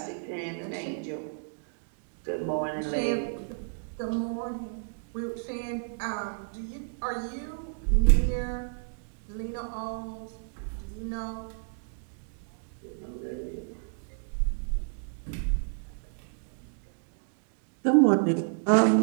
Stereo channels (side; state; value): left; silent; digital silence